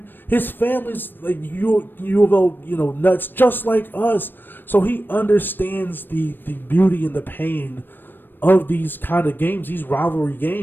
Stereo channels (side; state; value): right; late; 0.094 ms